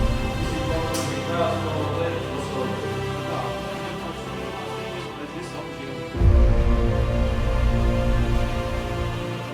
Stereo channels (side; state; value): both; identical; correlation 1.00